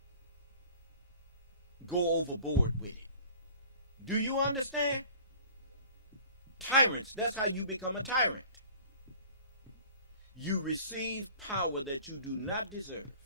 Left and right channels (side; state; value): both; inverted; correlation -0.48